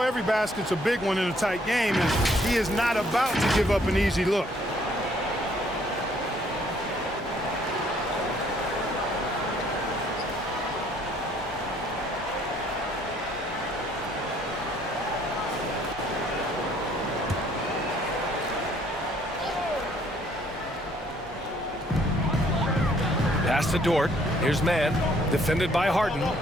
every basket's a big one in a tight game, and he is not about to give up an easy look. Pass to Dort. Here's man. Defended by Harden.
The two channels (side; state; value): both; normal; correlation 0.64